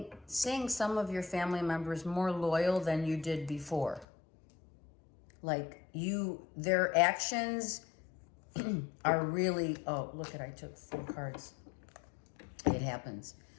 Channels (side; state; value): right; drops out; at 4.0 s